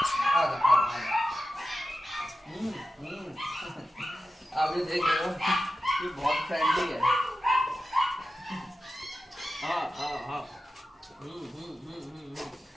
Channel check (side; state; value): both; normal; correlation 0.92